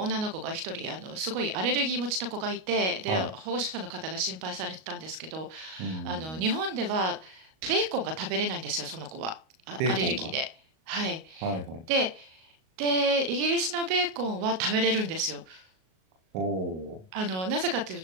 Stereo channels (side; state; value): left; late; 38 ms